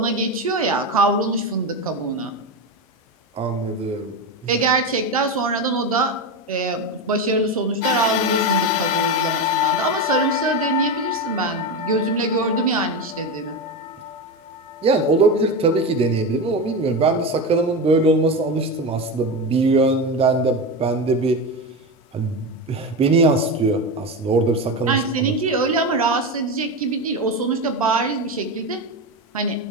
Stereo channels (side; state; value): both; normal; correlation 0.18